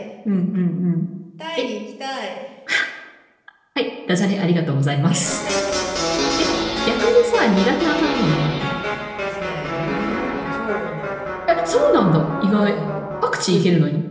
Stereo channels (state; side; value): identical; both; correlation 1.00